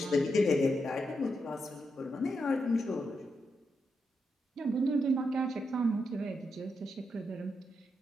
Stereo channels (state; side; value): normal; both; correlation 0.83